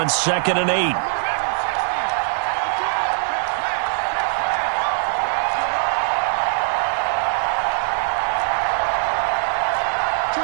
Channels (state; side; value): silent; left; 65 dB below the other